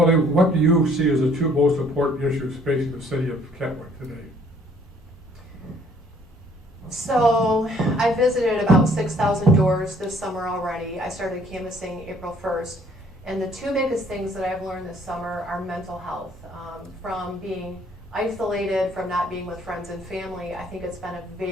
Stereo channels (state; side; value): normal; both; correlation 0.60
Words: what do you see as the 2 most important issues facing the city of Kentwood today? So I visited about 6,000 doors this summer already. I started canvassing April 1st. And the 2 biggest things that I've learned this summer are mental health. From being isolated, from not being with friends and family, I think it's been a